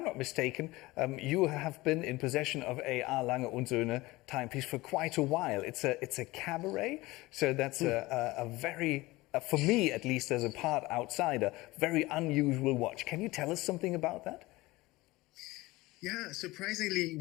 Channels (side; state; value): right; quieter; 20.3 dB